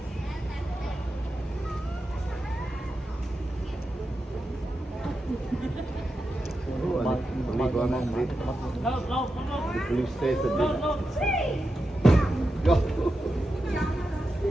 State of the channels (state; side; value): normal; both; correlation 0.89